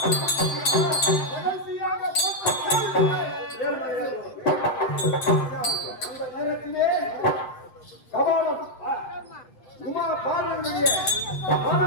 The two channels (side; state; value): right; late; 8.2 ms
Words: கடைசியாக அந்த நேரத்திலே கபாலம் உமா பார்வதியுடைய